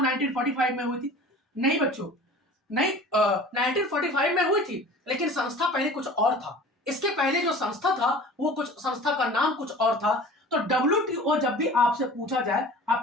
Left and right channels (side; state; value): both; normal; correlation 0.42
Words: 1945 में हुई थी। नहीं बच्चों, नहीं, 1945 में हुई थी, लेकिन संस्था पहले कुछ और था। इसके पहले जो संस्था था वो कुछ, संस्था का नाम कुछ और था। तो WTO जब भी आपसे पूछा जाए